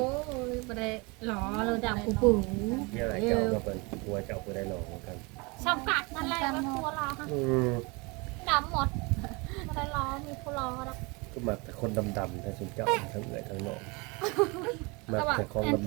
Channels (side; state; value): left; quieter; 27.8 dB